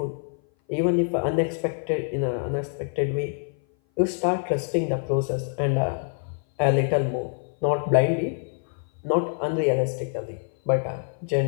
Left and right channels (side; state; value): right; silent; 58 dB below the other